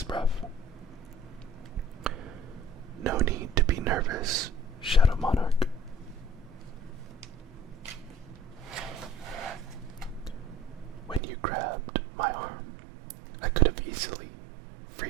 breath. No need to be nervous, Shadow Monarch. When you grabbed my arm, I could have easily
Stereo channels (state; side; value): drops out; left; at 11.2 s